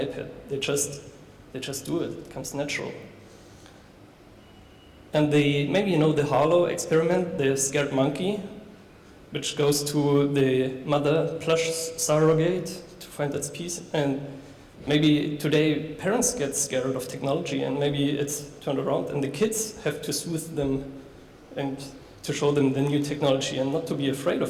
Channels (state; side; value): identical; both; correlation 1.00